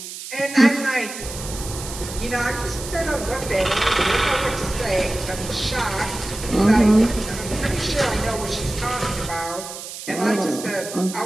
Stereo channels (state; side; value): noise; right; hiss, 10 dB below the sound